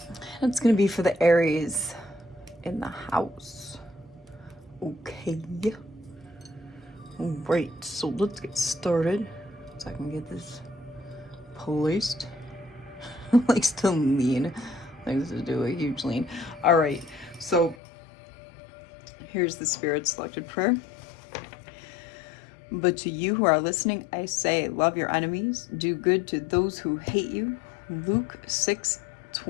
It's going to be for the Aries in the house. Okay. Alright, so let's get started. So I can get this placed. Like, still lean. Likes to do a huge lean. Alright, so here's the Spirit selected prayer. But to you who are listening, I say, love your enemies, do good to those who hate you. Luke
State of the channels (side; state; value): right; drops out; at 17.8 s